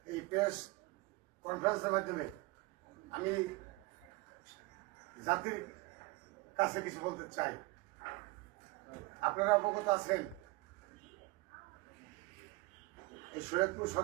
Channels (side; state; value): left; quieter; 23.1 dB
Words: এই প্রেস কনফারেন্সের মাধ্যমে আমি জাতির কাছে কিছু বলতে চাই। আপনারা অবগত আছেন এই শরীয়তপুর